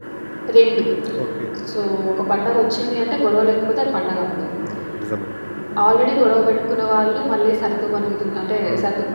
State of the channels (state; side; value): inverted; both; correlation -1.00